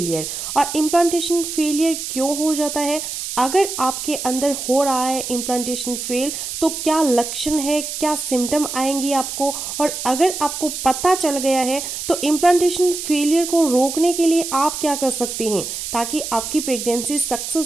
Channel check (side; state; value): right; noise; hiss, 6 dB below the sound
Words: और इम्प्लांटेशन फेलियर क्यों हो जाता है? अगर आपके अंदर हो रहा है इम्प्लांटेशन फेल तो क्या लक्षण है, क्या सिम्टम आएंगी आपको, और अगर आपको पता चल गया है तो इम्प्लांटेशन फेलियर को रोकने के लिए आप क्या कर सकती हैं ताकि आपकी प्रेगनेंसी